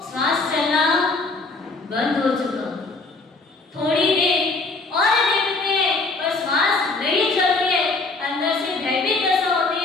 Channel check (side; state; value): right; quieter; 3.6 dB